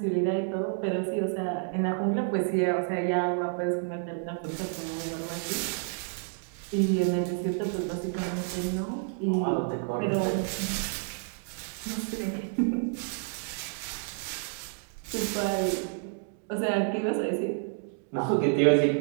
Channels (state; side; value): silent; left; 58 dB below the other